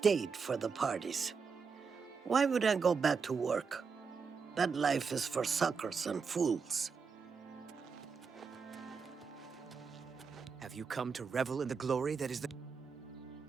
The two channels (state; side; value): quieter; left; 5.5 dB